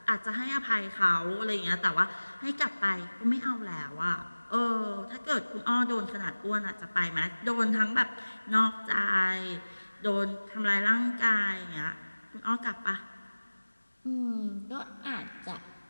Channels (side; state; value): both; inverted; correlation -1.00